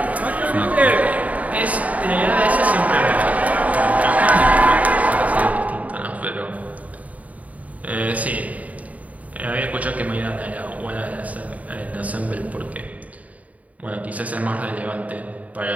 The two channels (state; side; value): late; left; 0.071 ms